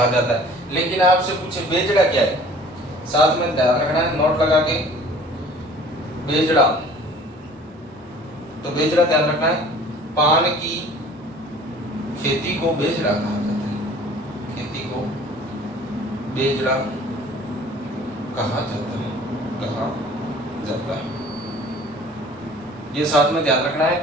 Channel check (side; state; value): both; normal; correlation 0.49